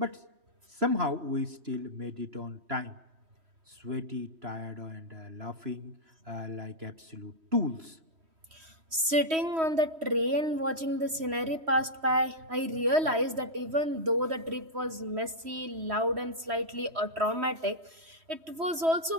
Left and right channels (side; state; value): left; late; 3.1 ms